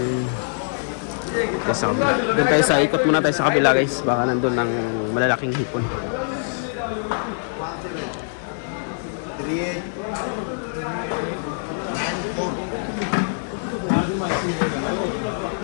Doon tayo sa ikot muna tayo sa kabila guys. Baka nandun ng malalaking hipon.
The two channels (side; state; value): right; silent; digital silence